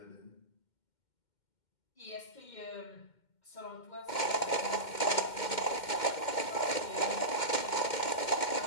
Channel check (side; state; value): right; late; 2.1 ms